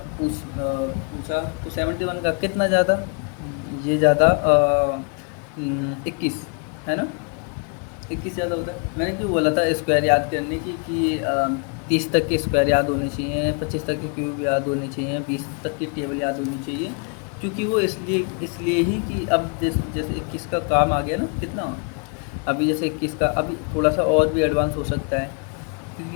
पूछा, तो 71 का कितना ज़्यादा? ये ज़्यादा 21, है ना, 21 ज़्यादा होता है। मैंने क्यों बोला था स्क्वायर याद करने की, कि 30 तक के स्क्वायर याद होने चाहिए, 25 तक के क्यूब याद होने चाहिए, 20 तक की टेबल याद होनी चाहिए, क्योंकि वो इसलिए ही कि अब जैसे 21 का काम आ गया ना, कितना अभी जैसे 21 का अभी थोड़ा सा और भी एडवांस हो सकता है,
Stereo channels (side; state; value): right; quieter; 35.8 dB